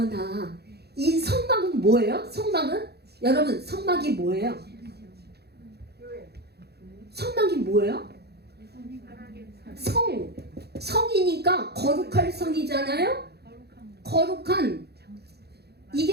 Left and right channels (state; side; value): late; left; 0.47 ms